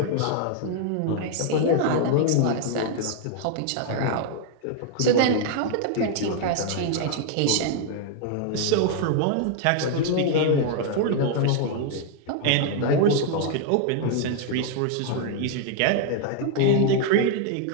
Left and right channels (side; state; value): both; different; correlation 0.00